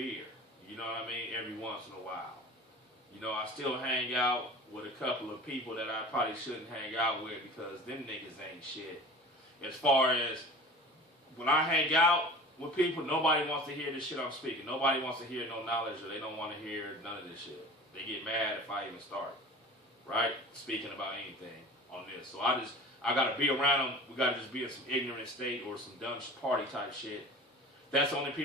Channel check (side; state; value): both; normal; correlation 0.40